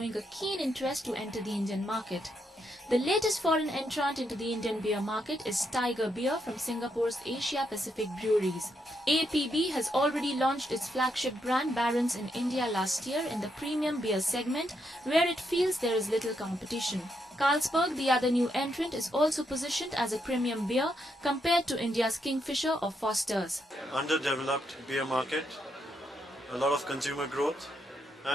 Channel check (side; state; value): both; normal; correlation 0.79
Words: a keen interest to enter the Indian market. The latest foreign entrant into the Indian beer market is Tiger Beer from Singapore's Asia Pacific Breweries. APB has already launched its flagship brand Barons in India last year in the premium beer segment, where it feels there is little competition. Carlsberg, the other new entrant, is also positioned as a premium beer compared to India's Kingfisher or Foster's. Underdeveloped beer market, a lot of consumer growth,